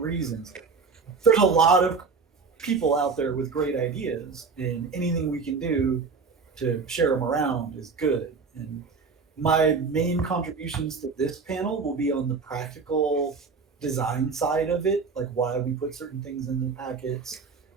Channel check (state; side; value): quieter; left; 4.9 dB